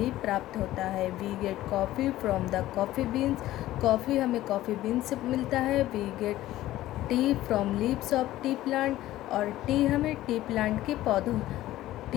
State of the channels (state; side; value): quieter; right; 15.1 dB